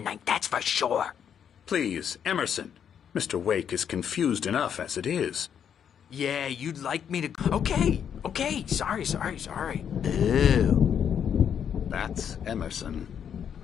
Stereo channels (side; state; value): right; quieter; 8.3 dB